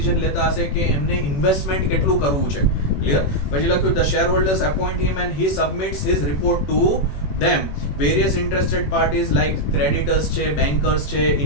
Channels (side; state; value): right; late; 21 ms